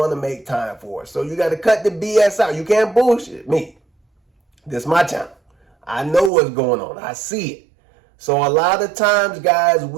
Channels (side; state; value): left; drops out; at 6.3 s